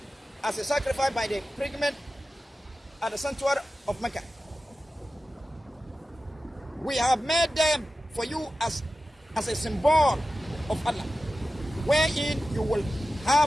as a sacrifice by the pilgrim at the sanctuary of Mecca. We have made them for you as a symbol of Allah, wherein you will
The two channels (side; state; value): both; normal; correlation 0.94